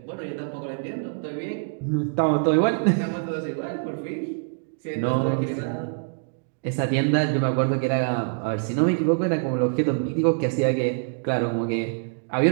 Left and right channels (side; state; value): left; silent; digital silence